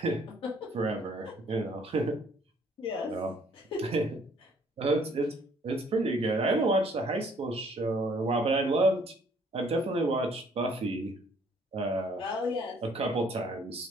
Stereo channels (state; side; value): normal; both; correlation 0.61